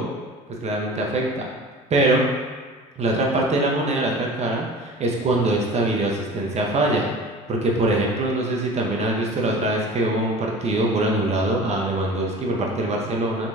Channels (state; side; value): normal; both; correlation 0.40